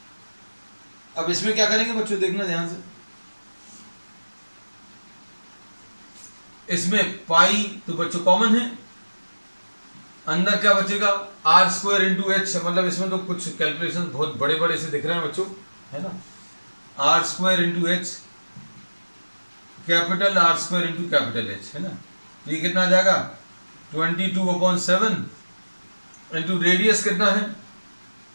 अब इसमें क्या करेंगे बच्चों, देखना ध्यान से। इसमें पाई तो बच्चों कॉमन है, अंदर क्या बचेगा? आर स्क्वायर इंटू एच, मतलब इसमें तो कुछ कैलकुलेशन बहुत बड़े बड़े से दिख रहे हैं बच्चों, है ना। R square into h capital R square into capital H, है ना। तो ये कितना आ जाएगा? 22/7 इंटू रेडियस कितना है?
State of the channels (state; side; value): inverted; both; correlation -1.00